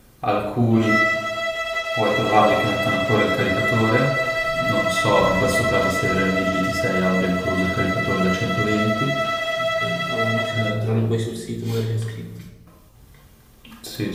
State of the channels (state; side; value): identical; both; correlation 1.00